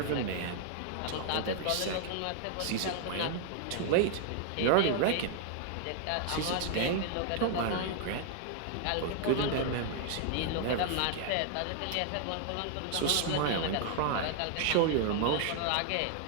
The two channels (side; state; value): both; different; correlation 0.00